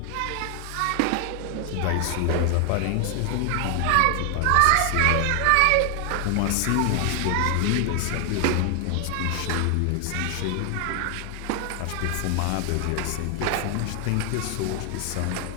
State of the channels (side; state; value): both; different; correlation 0.00